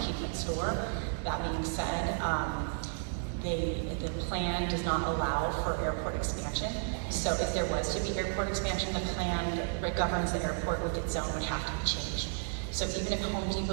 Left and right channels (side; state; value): left; silent; digital silence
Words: keep its store. That being said, the plan does not allow for airport expansion. So if there was to be airport expansion, the plan that governs the airport with its zone would have to be changed. So even if Home